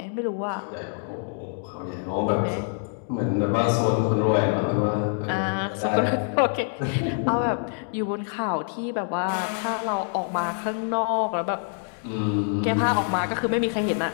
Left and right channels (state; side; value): silent; right; 61 dB below the other